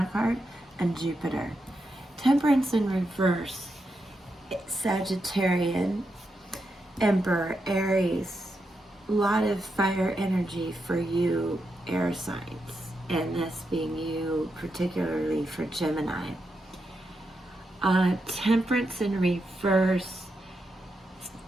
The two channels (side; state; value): both; normal; correlation 0.85